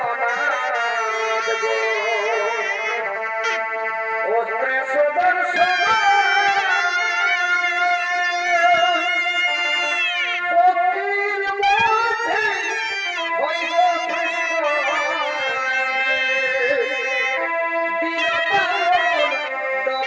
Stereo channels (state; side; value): identical; both; correlation 1.00